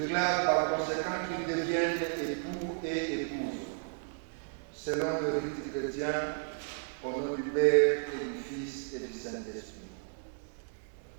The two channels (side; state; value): left; silent; digital silence